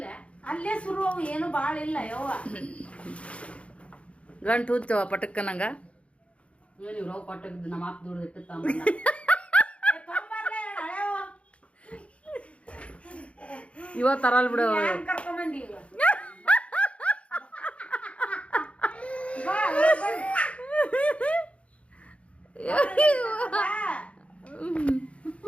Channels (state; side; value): late; right; 0.062 ms